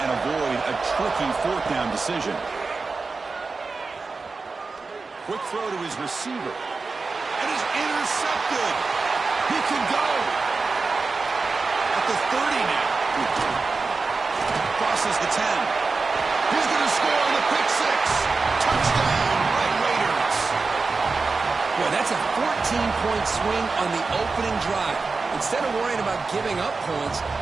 and avoid a tricky 4th down decision? Quick throw to his receiver. And he's intercepted. He can go. At the 30 now. Crosses the 10. He's going to score on the pick 6. Touchdown, Red Raiders. Boy, that's a 14-point swing on the opening drive. Instead of worrying about giving up points,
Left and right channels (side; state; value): left; quieter; 4.2 dB